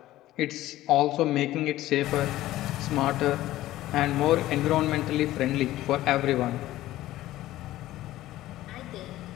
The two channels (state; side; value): quieter; right; 15.3 dB